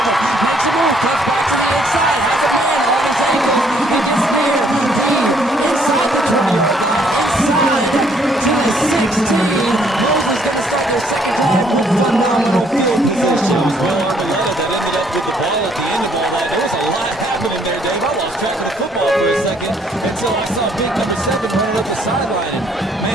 him. Makes a move, cuts back to the inside, has a man on his ankle. He gets near, deep, inside the 20-yard line, inside to the 16. Mosley's going to start their second drive with phenomenal field position. Will Arboleta that ended up with the ball at the end of all that. There was a lot happening there, Dave. I lost track of the football for a second until I saw big number 7 running up the sideline. And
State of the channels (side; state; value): both; normal; correlation 0.66